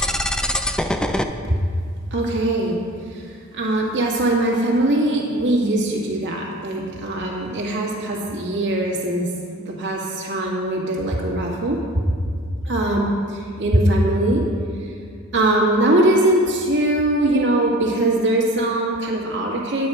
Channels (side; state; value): both; normal; correlation 0.42